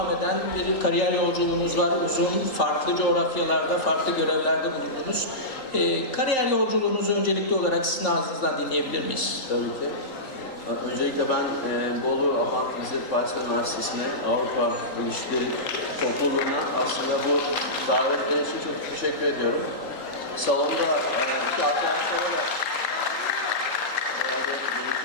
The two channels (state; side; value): late; right; 3.8 ms